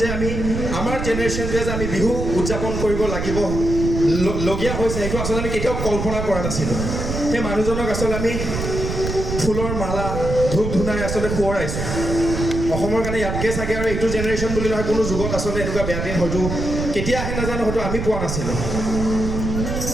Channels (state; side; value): noise; right; rumble, 3 dB below the sound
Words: আমি আমাৰ জেনেৰেশ্যনটোৱে যে আমি বিহু উদযাপন কৰিব লাগিব লগীয়া হৈছে সেইটো আচলতে আমি কেতিয়াও কল্পনা কৰা নাছিলোঁ সেই মানুহজনক আচলতে আমি ফুলৰ মালা ধূপ ধূনাই আচলতে সোঁৱৰাইছোঁ অসমৰ কাৰণে ইয়াতকৈ চাগে আৰু এইটো জেনেৰেশ্যন বুলি নহয় কোনো যুগত আচলতে এনেকুৱা বেয়া দিন হয়তো কেতিয়া আহে নাজানো হয়তো আমি পোৱা নাছিলোঁ